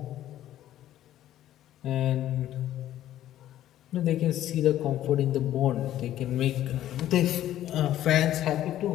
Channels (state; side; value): quieter; right; 12.7 dB